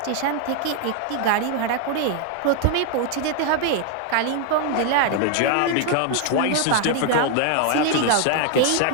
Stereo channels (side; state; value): both; different; correlation 0.00